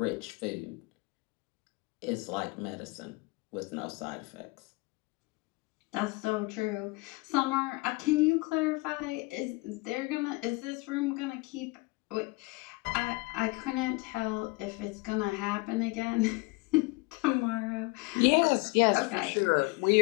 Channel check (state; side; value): quieter; right; 25.9 dB